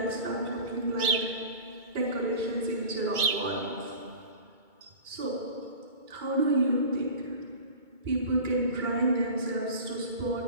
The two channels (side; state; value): left; late; 2.2 ms